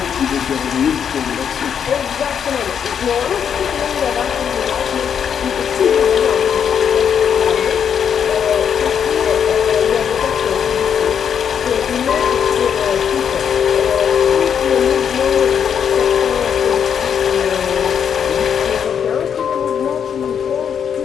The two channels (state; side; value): quieter; right; 7.8 dB